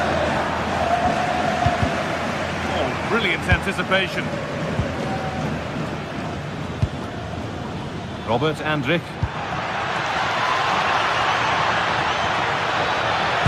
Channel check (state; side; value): identical; both; correlation 1.00